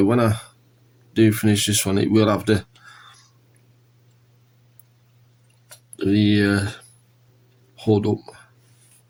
when I do finish this one it will have the hood up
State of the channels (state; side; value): identical; both; correlation 1.00